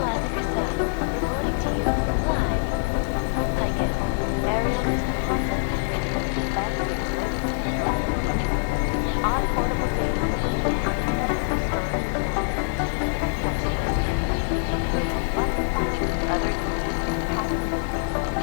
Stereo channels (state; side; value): silent; right; digital silence